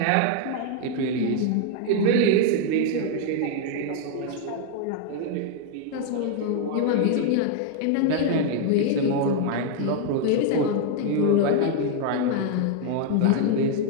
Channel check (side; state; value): both; different; correlation 0.00